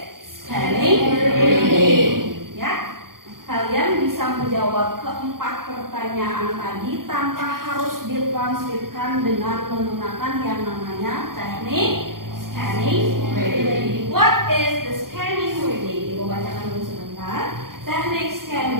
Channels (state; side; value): late; left; 0.92 ms